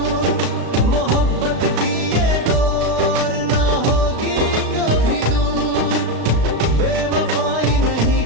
मोहब्बत की ये दौर ना होगी कभी दूर। बेवफाई नहीं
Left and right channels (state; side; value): late; left; 36 ms